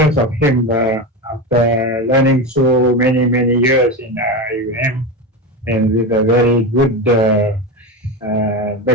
of him after learning so many years in IIUM and with a very good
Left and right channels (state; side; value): normal; both; correlation 0.19